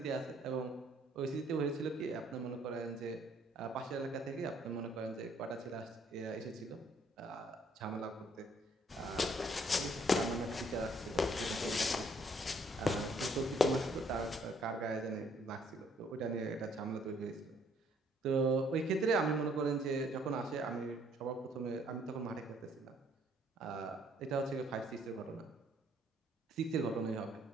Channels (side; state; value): both; normal; correlation 0.64